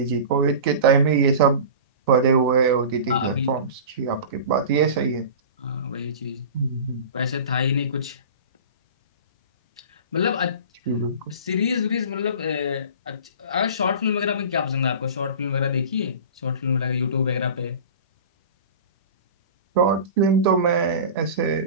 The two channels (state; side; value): inverted; both; correlation -0.35